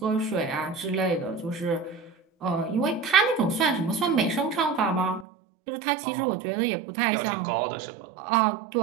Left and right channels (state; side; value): drops out; left; at 5.2 s